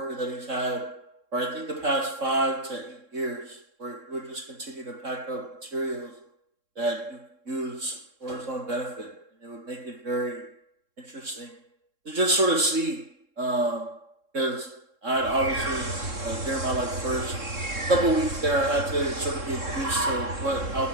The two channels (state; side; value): late; left; 3.7 ms